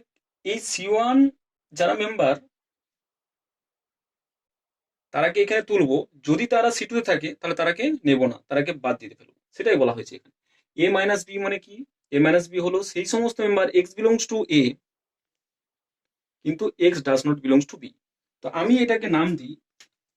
এই C1 যারা মেম্বার তারাকে এখানে তুলবো, যদি তারা C2 তে থাকে তাহলে তারাকে নেব না, তারাকে বাদ দিতে ফেলবো, সেটাই বলা হয়েছে এখানে। A - B মানে কি? A - B হলো সেই সমস্ত member x belongs to A কিন্তু x does not belongs two B। তো আমি এটাকে নাম দিই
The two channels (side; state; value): both; identical; correlation 1.00